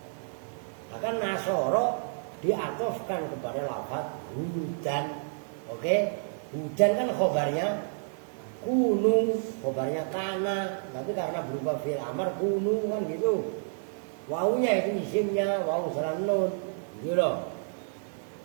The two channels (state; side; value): silent; left; 58 dB below the other